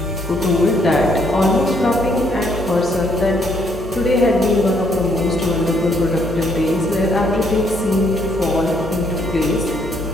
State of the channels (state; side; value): normal; both; correlation 0.69